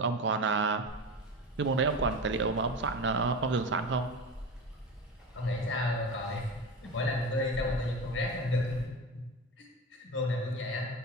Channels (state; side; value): normal; both; correlation 0.26